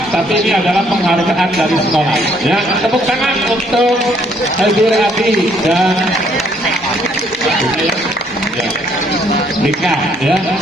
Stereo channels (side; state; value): both; normal; correlation 0.66